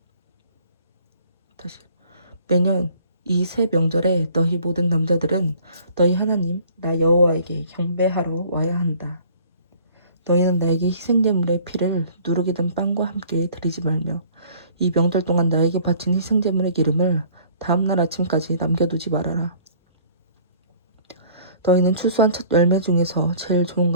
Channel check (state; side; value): inverted; both; correlation -0.53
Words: 다시 매년 이 세 명절에 너희 모든 남자들은 너희 하나님 나 여호와에게 경배하러 와야 한다. 너희는 나에게 희생제물의 피를 누룩이 든 빵과 함께 드리지 말며 이 명절 동안 나에게 바친 희생제물의 기름을 다음날 아침까지 남겨두지 말아라. 너희는 추수한 첫 열매 중에서 제일 좋은